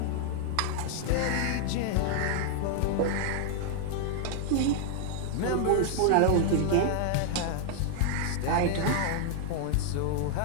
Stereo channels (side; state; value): both; different; correlation 0.00